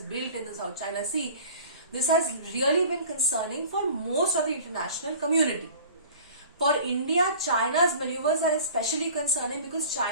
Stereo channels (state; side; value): inverted; both; correlation -0.43